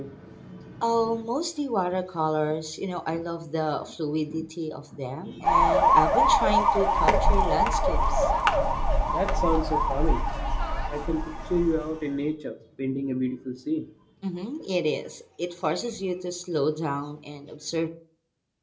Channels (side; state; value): both; identical; correlation 1.00